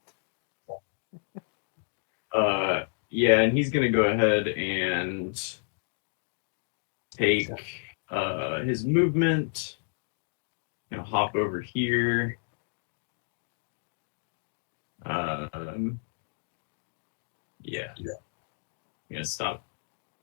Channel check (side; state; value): right; silent; digital silence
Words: Yeah, and he's gonna go ahead and take his movement. Hop over here. Yeah. I'm gonna stop